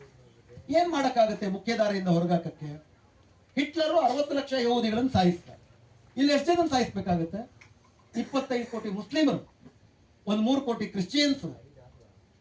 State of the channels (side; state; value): both; identical; correlation 1.00